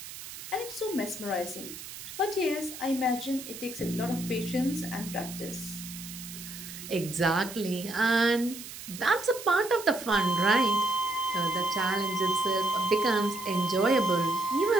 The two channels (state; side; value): noise; right; hiss, 12 dB below the sound